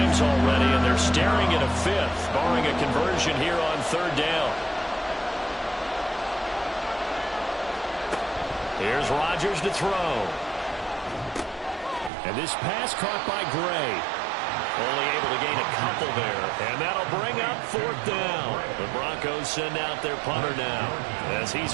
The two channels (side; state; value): left; drops out; at 12.1 s